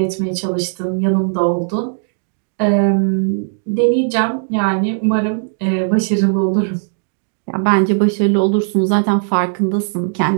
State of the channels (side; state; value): left; silent; digital silence